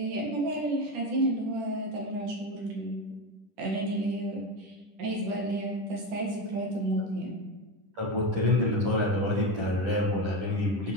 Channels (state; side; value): late; left; 10 ms